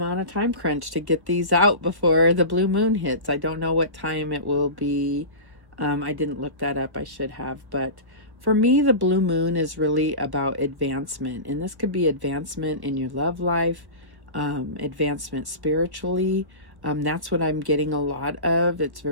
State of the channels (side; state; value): left; late; 1.2 ms